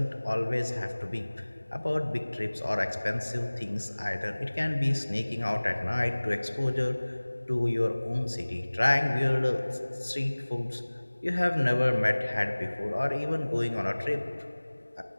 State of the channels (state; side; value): inverted; both; correlation -1.00